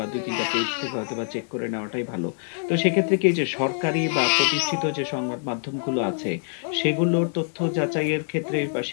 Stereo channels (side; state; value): right; silent; 62 dB below the other